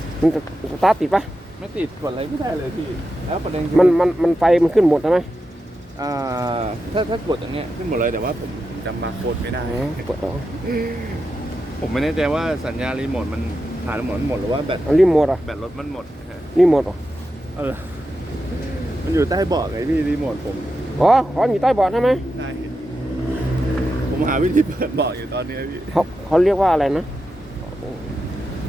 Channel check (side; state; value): both; normal; correlation 0.89